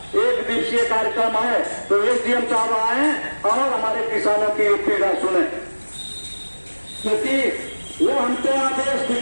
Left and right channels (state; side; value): inverted; both; correlation -1.00